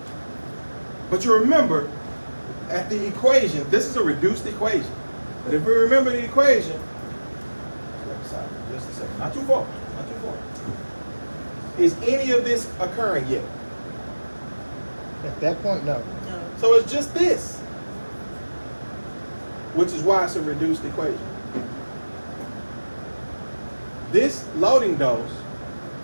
But you remember, at the equation, this is a reduced equation. But if we remember the equation, just a second, not too far. Is any of this occurring yet? At that point, no. So it's just this, which is why it's a reduced equation. This loading dose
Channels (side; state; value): both; inverted; correlation -1.00